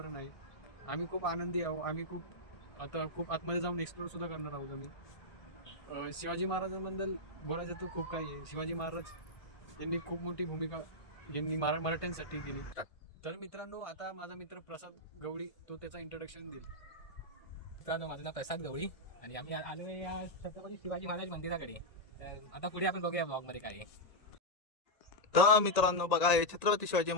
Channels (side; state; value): right; late; 1.8 ms